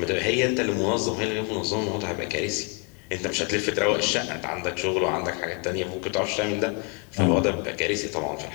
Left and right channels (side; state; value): right; quieter; 36.2 dB